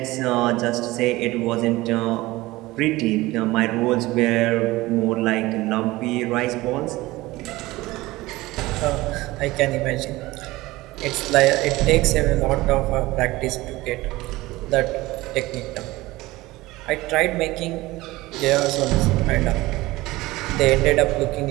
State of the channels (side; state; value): left; quieter; 19.3 dB